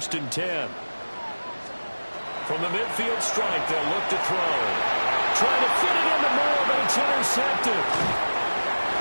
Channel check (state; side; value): inverted; both; correlation -1.00